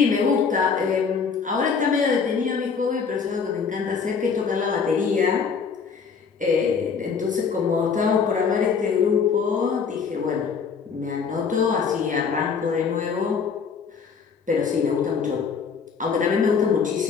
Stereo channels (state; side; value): quieter; right; 5.9 dB